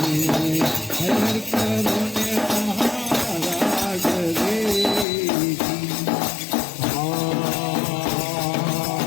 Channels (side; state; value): right; drops out; at 5.1 s